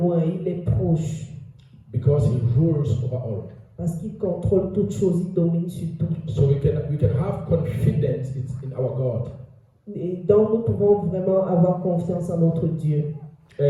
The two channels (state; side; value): identical; both; correlation 1.00